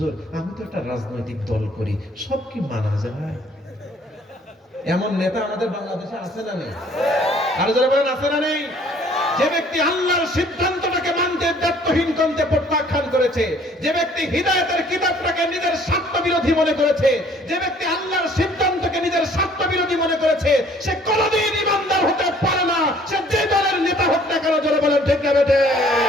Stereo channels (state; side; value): normal; both; correlation 0.57